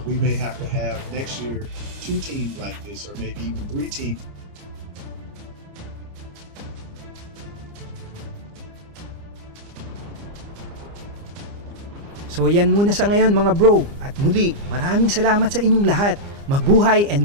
we may have to have next year 2 teams like this, or maybe even 3 teams. So yan muna sa ngayon mga bro, at muli maraming salamat sa inyong lahat. Mabuhay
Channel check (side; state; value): left; late; 29 ms